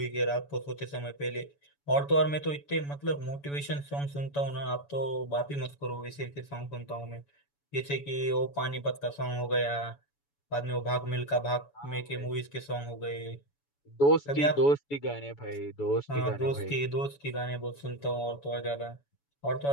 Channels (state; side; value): late; right; 7.0 ms